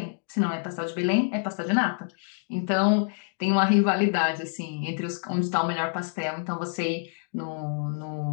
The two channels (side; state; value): right; silent; 60 dB below the other